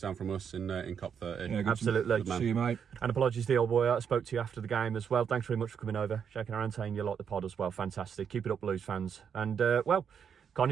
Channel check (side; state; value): left; quieter; 7.4 dB